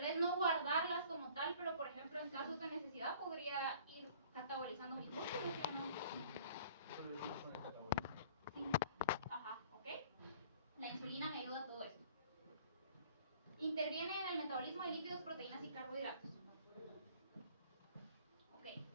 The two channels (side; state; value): both; inverted; correlation -0.51